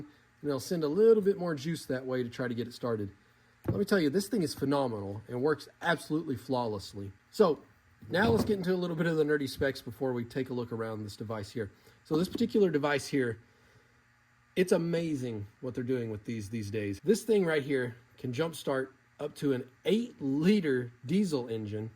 it'll send a little bit more juice that way to try to get it started. Let me tell you, this thing is phenomenal and works absolutely flawlessly. So now let's get into a little bit of the nerdy specs before we take a look around this device here. So this particular device here, it's amazing what they're doing with these days. This thing right here can jumpstart up to an 8-liter diesel engine.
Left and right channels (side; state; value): both; identical; correlation 1.00